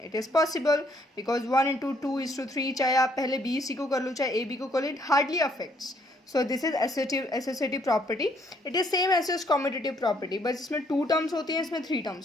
it is possible because 1 into 2 is to 3, चाहे आप पहले b c को कर लो चाहे a b को कर लो, it hardly affects. So this is associative property. It is same as commutative property, but इसमें 2 terms होती हैं, इसमें 3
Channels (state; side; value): normal; both; correlation 0.68